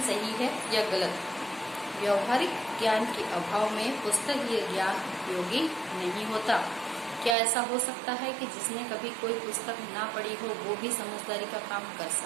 सही है या गलत? व्यावहारिक ज्ञान के अभाव में पुस्तकीय ज्ञान उपयोगी नहीं होता। क्या ऐसा हो सकता है कि जिसने कभी कोई पुस्तक ना पढ़ी हो वो भी समझदारी का काम कर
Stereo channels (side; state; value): left; drops out; at 7.4 s